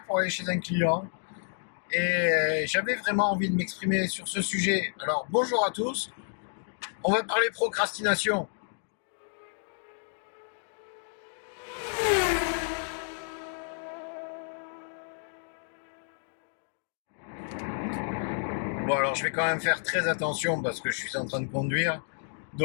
pour aller chez un client et j'avais vraiment envie de m'exprimer sur ce sujet. Alors, bonjour à tous. On va parler procrastination. Bon, alors je vais quand même faire très attention parce que je suis en train de conduire.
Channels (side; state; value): right; silent; digital silence